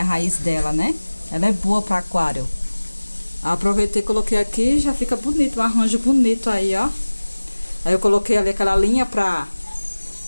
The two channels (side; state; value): both; inverted; correlation -1.00